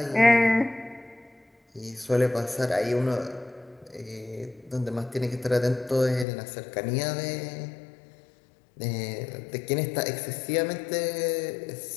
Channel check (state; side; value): drops out; right; at 6.2 s